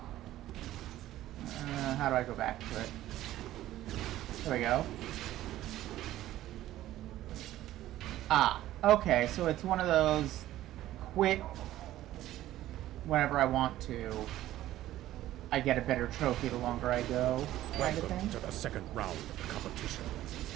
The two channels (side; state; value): left; quieter; 14.2 dB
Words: How do I go back to it? There we go. Ah, okay, so it's one of those quit whenever I want to. I get a better trophy the longer I go, kind of Welcome thing. to the second round of the competition.